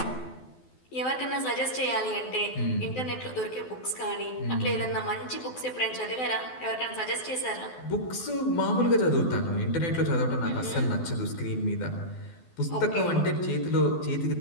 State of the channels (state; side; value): late; right; 12 ms